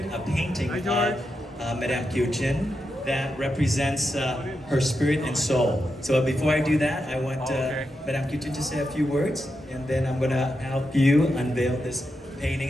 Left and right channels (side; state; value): both; normal; correlation 0.86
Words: a painting of Madame Kieu Chin that represents her spirit and soul. So before I do that, I want Madame Kieu Chin to say a few words, and then I'm gonna help you unveil this painting,